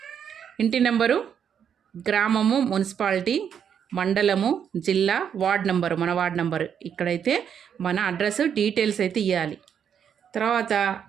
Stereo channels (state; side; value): quieter; left; 8.1 dB